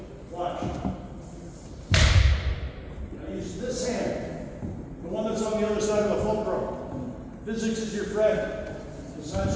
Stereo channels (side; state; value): both; identical; correlation 1.00